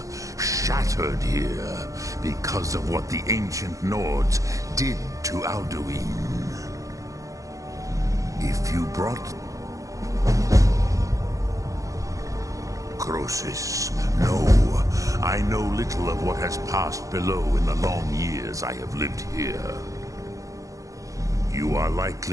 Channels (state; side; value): late; left; 0.16 ms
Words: Shattered here because of what the ancient Nords did to Alduin. If you brought necrosis. No, I know little of what has passed below in the long years I have lived here. You are